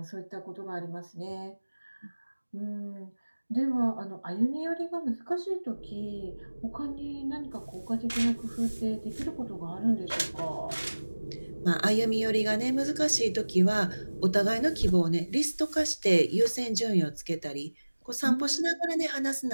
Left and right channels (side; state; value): both; inverted; correlation -1.00